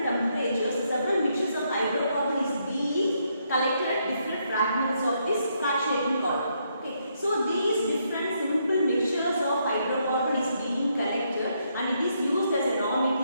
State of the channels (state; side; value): inverted; both; correlation -0.76